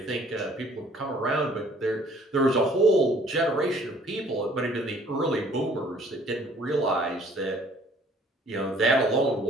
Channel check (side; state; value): both; normal; correlation 0.57